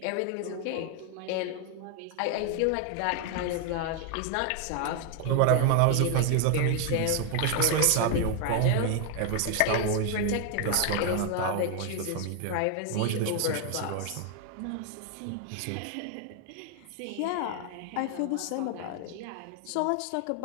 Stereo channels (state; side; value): different; both; correlation 0.00